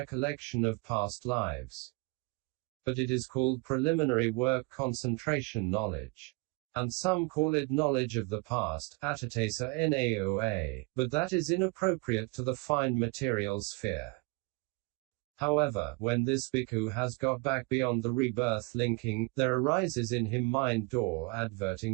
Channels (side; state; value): left; quieter; 28.6 dB